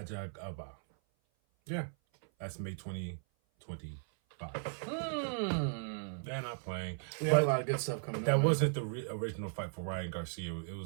Yeah. That's May 2025. They're not playing. We have a lot of good stuff coming up. That wasn't the original fight for Ryan Garcia. He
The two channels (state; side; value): silent; left; 53 dB below the other